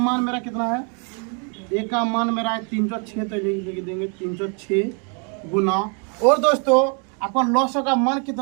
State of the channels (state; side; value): quieter; left; 37.8 dB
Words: मेरा कितना है, ए का मान मेरा है 306। तो लिख देंगे 306 गुना, और दोस्तों आपका लॉस का मान